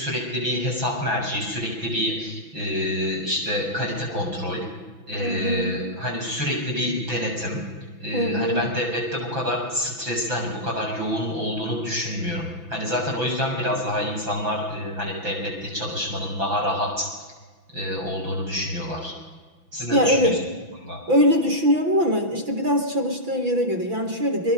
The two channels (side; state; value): left; late; 6.0 ms